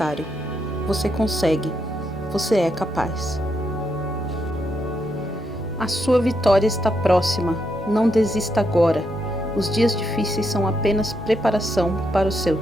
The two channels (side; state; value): both; normal; correlation 0.80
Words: Você consegue. Você é capaz. A sua vitória está próxima. Não desista agora. Os dias difíceis são apenas preparação para o seu